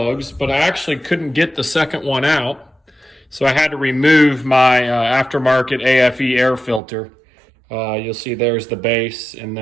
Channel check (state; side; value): drops out; left; at 6.8 s